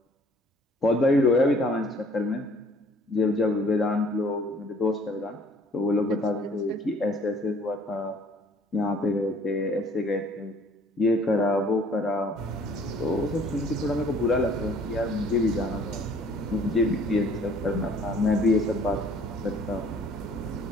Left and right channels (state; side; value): normal; both; correlation 0.57